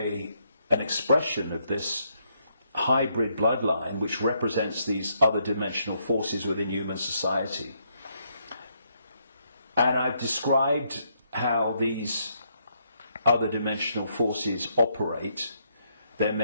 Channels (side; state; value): both; inverted; correlation -0.75